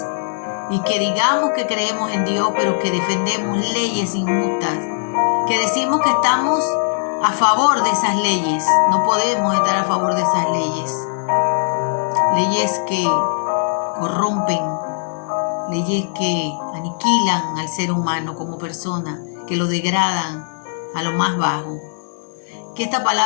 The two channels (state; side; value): silent; right; digital silence